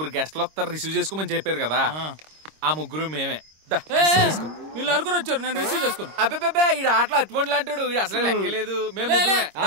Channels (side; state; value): left; late; 26 ms